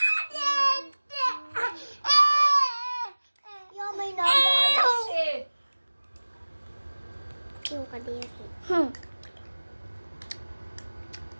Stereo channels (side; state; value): both; inverted; correlation -1.00